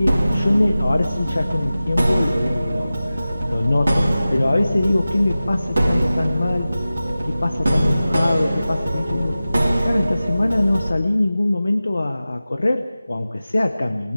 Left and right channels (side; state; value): both; inverted; correlation -0.96